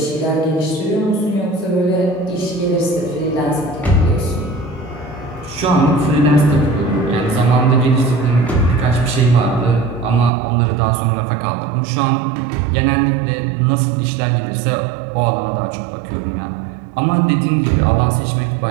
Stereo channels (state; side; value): drops out; left; at 10.3 s